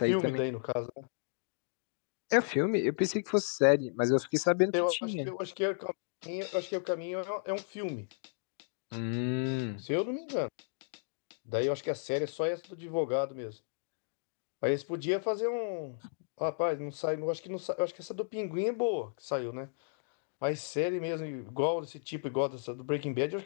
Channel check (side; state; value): right; silent; digital silence